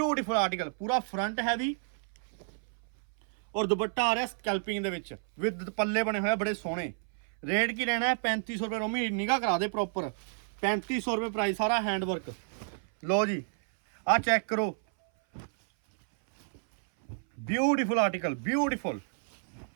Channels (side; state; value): left; silent; 57 dB below the other